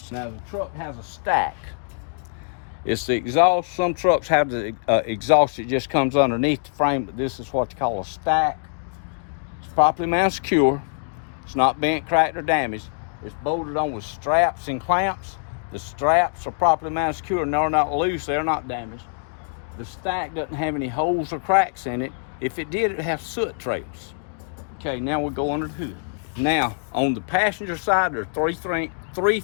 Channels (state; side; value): silent; right; digital silence